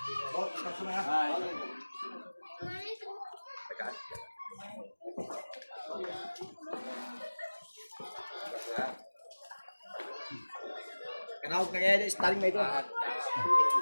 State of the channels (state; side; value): inverted; both; correlation -1.00